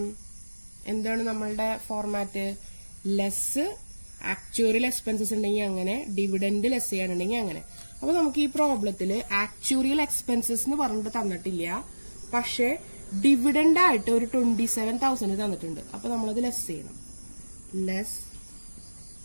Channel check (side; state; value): both; inverted; correlation -1.00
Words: എന്താണ് നമ്മളുടെ ഫോർമാറ്റ്? ലെസ് ആക്ച്വറിയൽ എക്സ്പെൻസസ് ഉണ്ടെങ്കിൽ അങ്ങനെ, ഡിവിഡൻഡ് ലെസ് ചെയ്യാനുണ്ടെങ്കിൽ അങ്ങനെ. അപ്പൊ നമുക്ക് ഈ പ്രോബ്ലത്തില് ആക്ച്വറിയൽ എക്സ്പെൻസസ് എന്ന് പറഞ്ഞിട്ട് തന്നിട്ടില്ല, പക്ഷെ ഡിവിഡൻഡ് ആയിട്ട് ഒരു 27,000 തന്നിട്ടുണ്ട്. അപ്പൊ നമ്മളത് ലെസ് ചെയ്യണം. ലെസ്